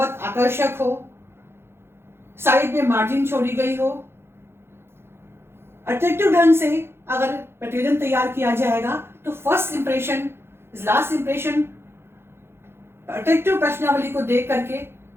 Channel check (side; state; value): left; late; 0.12 ms